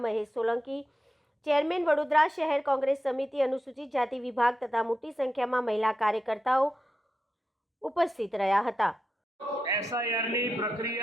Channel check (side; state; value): both; normal; correlation 0.89